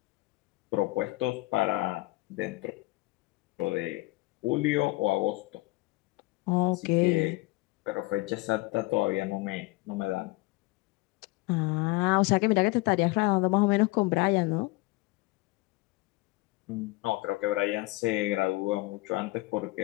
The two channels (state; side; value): quieter; right; 22.2 dB